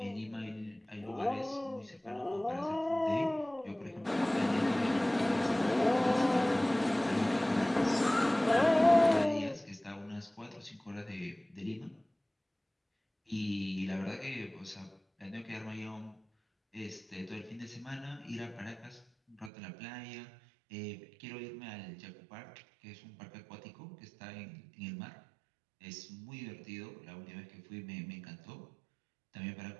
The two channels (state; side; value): drops out; left; at 19.5 s